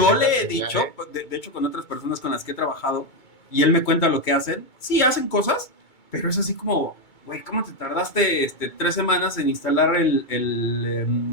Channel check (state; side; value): late; right; 2.2 ms